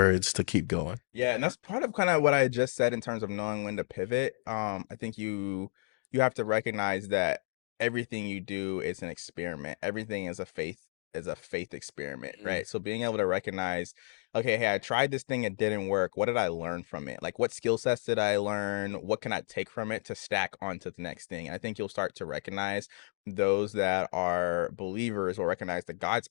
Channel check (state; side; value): silent; right; digital silence